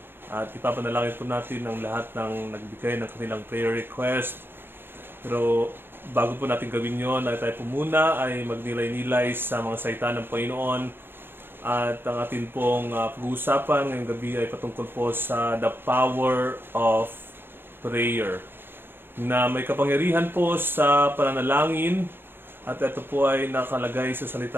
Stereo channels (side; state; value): left; late; 0.10 ms